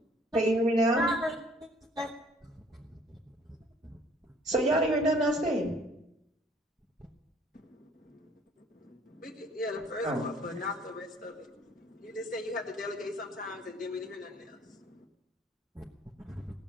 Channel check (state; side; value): normal; both; correlation 0.57